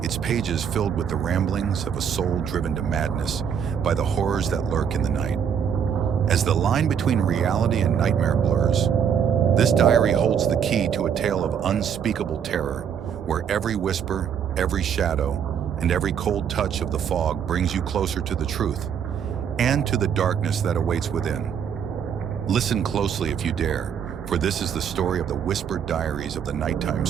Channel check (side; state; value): left; quieter; 7.9 dB